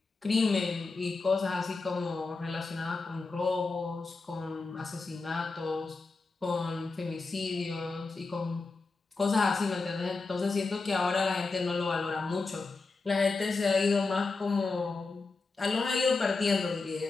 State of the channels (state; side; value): quieter; right; 3.9 dB